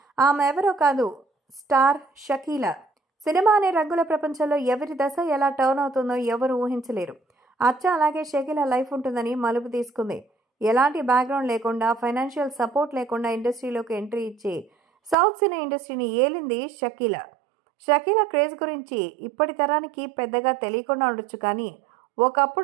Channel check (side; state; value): left; drops out; at 15.2 s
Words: ఆమె ఎవరో కాదు, స్టార్ షకీలా. సినిమా అనే రంగుల ప్రపంచంలో ఎవరి దశ ఎలా టర్న్ అవుతుందో ఎవరు ఊహించలేరు. అచ్చా అలాగే షకీలా లైఫ్ ఉంటుందని మలుపు తీసుకుంది. ఎలాంటి బ్యాక్గ్రౌండ్ లేకుండా, ఫైనాన్షియల్ సపోర్ట్ లేకుండా ఇండస్ట్రీలోకి ఎంట్రీ ఇచ్చి సౌత్ సినీ ఇండస్ట్రీని ఏలింది షకీలా. షకీలా క్రేజ్ గురించి ఇప్పటి తరానికి పెద్దగా తెలియకుండా ఉండొచ్చు, కానీ